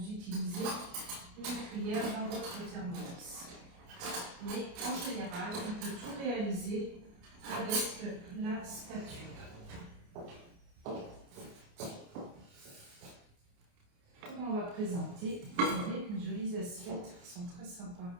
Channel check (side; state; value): left; late; 29 ms